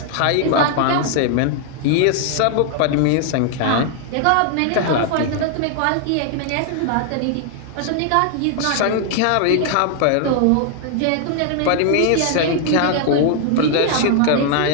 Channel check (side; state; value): both; different; correlation 0.00